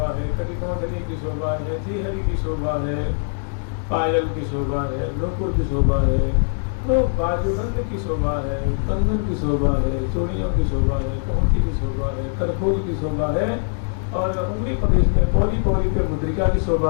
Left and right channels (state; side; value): silent; right; digital silence